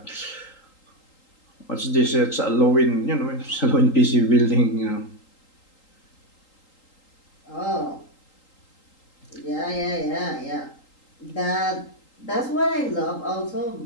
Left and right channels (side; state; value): right; late; 3.8 ms